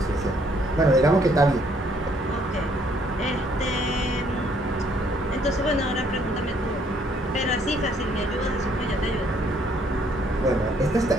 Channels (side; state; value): both; normal; correlation 0.66